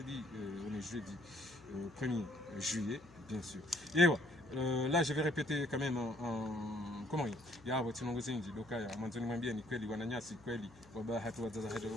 on est jeudi 1er juillet, bien sûr. Et voilà. Là, je vais répéter quand même en Comorien. Ya wati nongozenji dokaya mwanzoni mwambia ni kweli wananyasi kweli wabahatu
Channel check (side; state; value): left; noise; hum, 24 dB below the sound